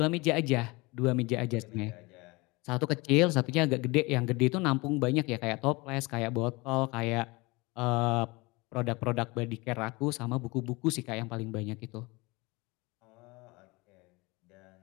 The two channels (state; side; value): quieter; right; 24.7 dB